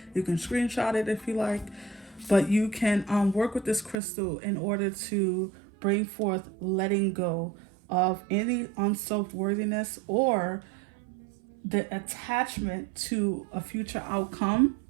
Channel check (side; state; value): left; drops out; at 4.0 s